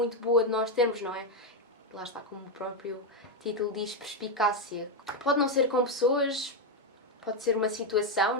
boa de nós termos, não é? Lá está, como o próprio título diz, perspicácia. Pode não ser com pessoas, pode ser uma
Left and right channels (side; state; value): both; normal; correlation 0.05